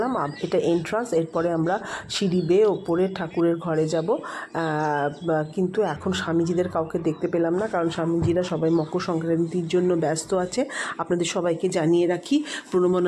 এটা এন্ট্রান্স। এরপরে আমরা সিঁড়ি বেয়ে ওপরে ঠাকুরের ঘরে যাব। কিন্তু এখন স্বামীজিদের কাউকে দেখতে পেলাম না, কারণ স্বামীজিরা সবাই মকর সংক্রান্তির জন্য ব্যস্ত আছে। আপনাদের সবাইকে জানিয়ে রাখি,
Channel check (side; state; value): both; identical; correlation 1.00